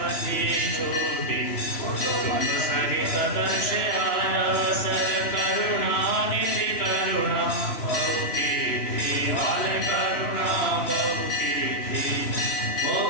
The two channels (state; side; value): late; right; 3.0 ms